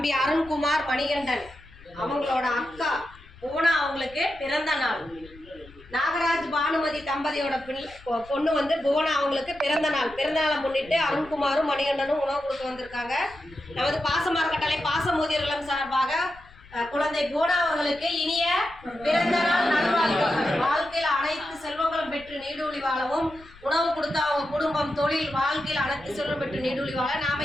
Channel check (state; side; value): noise; left; rumble, 22 dB below the sound